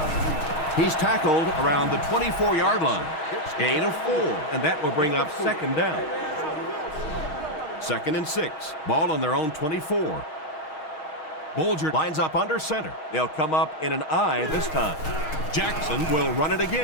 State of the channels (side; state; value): right; late; 6.5 ms